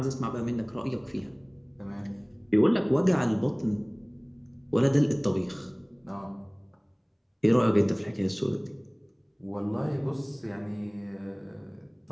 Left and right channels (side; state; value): both; identical; correlation 1.00